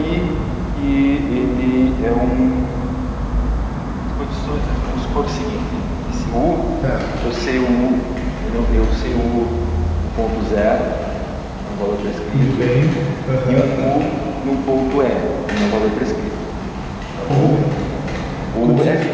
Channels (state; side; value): identical; both; correlation 1.00